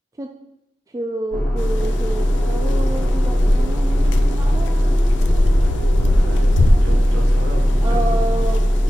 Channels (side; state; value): both; normal; correlation 0.95